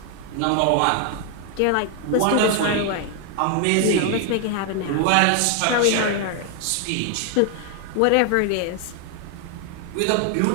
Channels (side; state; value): both; different; correlation 0.00